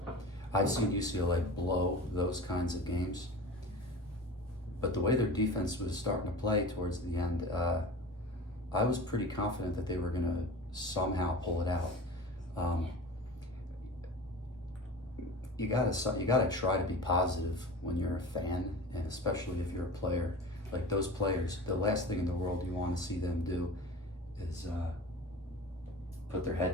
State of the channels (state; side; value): normal; both; correlation 0.35